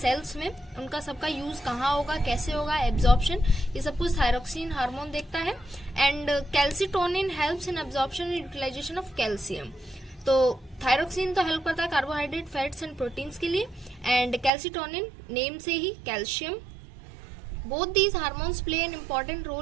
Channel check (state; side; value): drops out; left; at 14.5 s